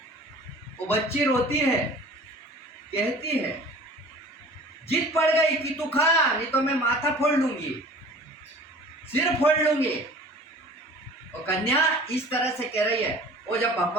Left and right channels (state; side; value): normal; both; correlation 0.44